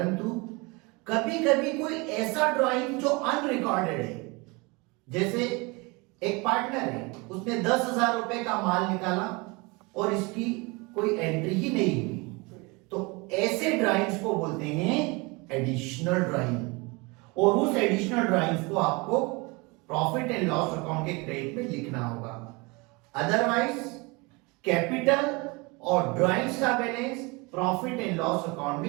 कभी कभी कोई ऐसा ड्राइंग जो अनरिकॉर्डेड है, जैसे एक पार्टनर है उसने 10,000 रुपए का माल निकाला और इसकी कोई एंट्री ही नहीं हुई, तो ऐसे ड्राइंग्स को बोलते हैं एडिशनल ड्राइंग, और उस एडिशनल ड्राइंग्स को आपको प्रॉफिट एंड लॉस अकाउंट के क्रेडिट में लिखना होगा। अदरवाइज कैपिटल और ड्राइंग्स का balance profit and loss account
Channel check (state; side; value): quieter; left; 26.9 dB